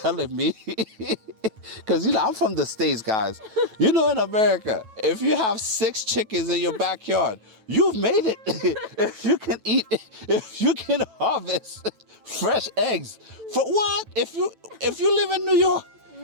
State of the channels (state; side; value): late; left; 9.2 ms